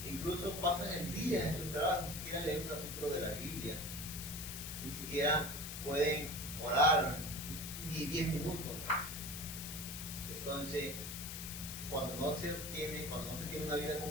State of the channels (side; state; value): left; noise; hiss, 7 dB below the sound